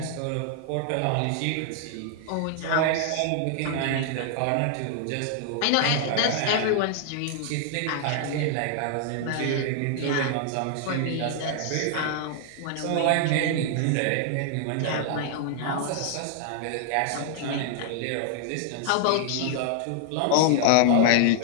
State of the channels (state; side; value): different; both; correlation 0.00